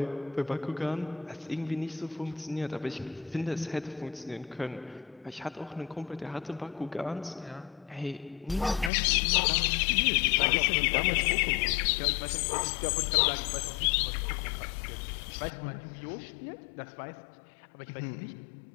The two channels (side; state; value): right; drops out; at 8.9 s